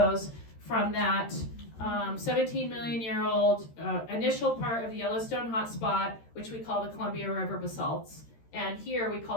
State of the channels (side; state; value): right; late; 13 ms